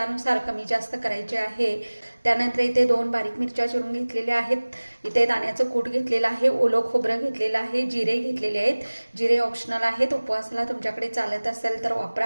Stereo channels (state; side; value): inverted; both; correlation -1.00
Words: कमी जास्त करायचे आहे। त्यानंतर इथे 2 बारीक मिरच्या चिरून घेतलेल्या आहेत, इथे दाण्याचं कूट घेतलेलं आहे, ओलं खोबरं घेतलेलं आहे, जिरे घेतलेले आहेत। जिरे ऑप्शनल आहेत, उपवासाला तुमच्याकडे चालत असेल तर